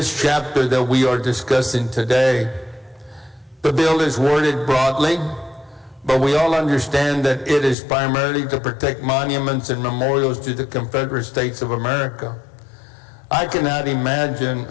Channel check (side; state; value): right; drops out; at 7.8 s